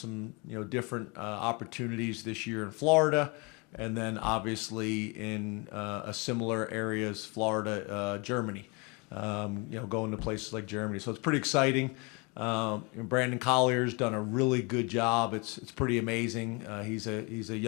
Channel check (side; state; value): right; quieter; 30.0 dB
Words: different opportunities this year in Florida, and then obviously in a similar areas, Florida, Germany. Going to places like Germany, so it's pretty exciting. Brandon Collier's done a really good job. It's pretty amazing. He's a